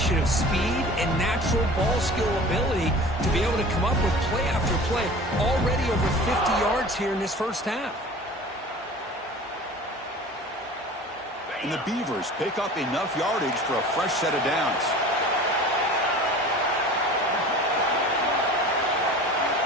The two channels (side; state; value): both; normal; correlation 0.41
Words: of speed and natural ball skill ability to be able to come up with play after play. Already over 50 yards here in this 1st half. And the Beavers pick up enough yardage for a fresh set of downs.